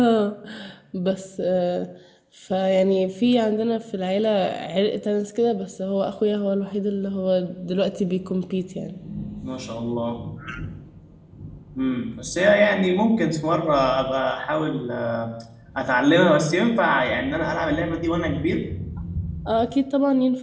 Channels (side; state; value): both; identical; correlation 1.00